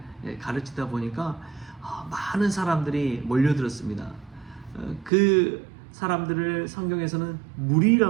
가르치다 보니까 많은 사람들이 몰려들었습니다. 그 사람들을 성경에서는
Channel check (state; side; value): drops out; left; at 5.1 s